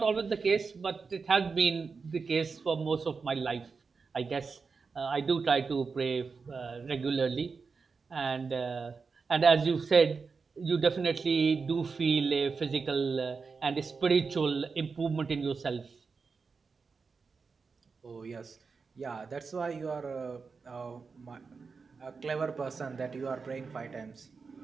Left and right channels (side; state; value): left; quieter; 4.9 dB